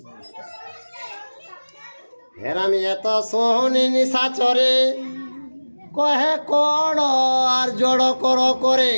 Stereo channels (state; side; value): inverted; both; correlation -1.00